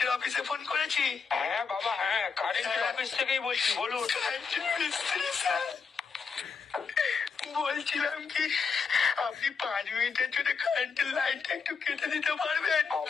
অফিসে ফোন করেছি? হ্যাঁ বাবা, হ্যাঁ কারেন্টের অফিস থেকেই বলছি, বলুন। কারেন্টের মিস্ত্রি স্যার, বলছিলাম কি আপনি 5 মিনিটের জন্য কারেন্টের লাইনটা একটু কেটে দিতে পারবেন?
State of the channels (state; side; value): quieter; right; 5.5 dB